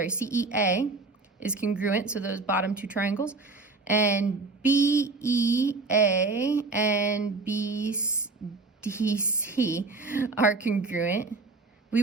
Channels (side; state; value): left; quieter; 3.8 dB